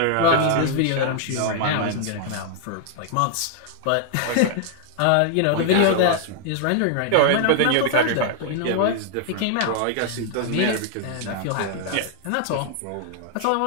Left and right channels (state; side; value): different; both; correlation 0.00